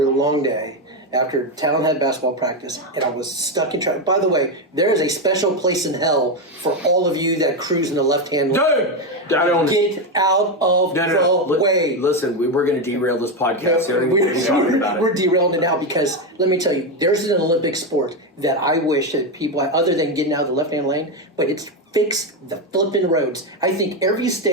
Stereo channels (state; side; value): normal; both; correlation 0.10